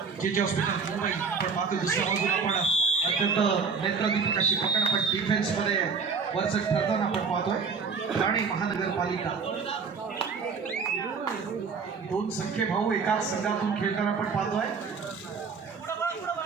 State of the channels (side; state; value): left; quieter; 5.3 dB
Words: जे हॉस्पिटल मुंबई आपण पाहतो. दुसऱ्या बाजूला आपण अत्यंत नेत्रदीपक अशी पकड पण डिफेन्समध्ये वरचढ ठरताना आपण पाहतोय. ठाणे महानगरपालिका दोन सख्खे भाऊ एकाच संघातून खेळताना आपण पाहतोय.